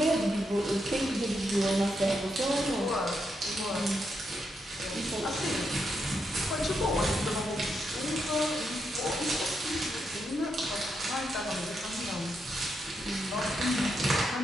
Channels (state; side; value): normal; both; correlation 0.82